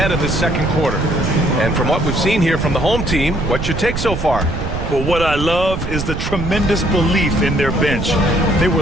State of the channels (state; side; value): noise; right; rumble, 4 dB below the sound